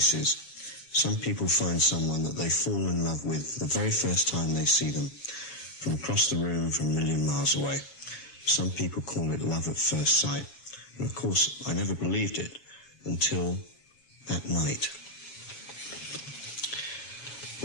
some people find someone that they fall in love with the very first time they see them, from across the room, from a million miles away. Some people call it love at first sight. And of course, I never believed it until that night.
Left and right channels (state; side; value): late; right; 7.1 ms